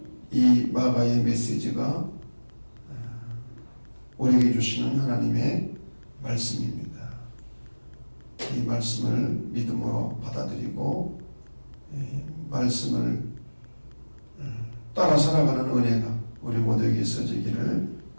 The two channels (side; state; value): both; inverted; correlation -1.00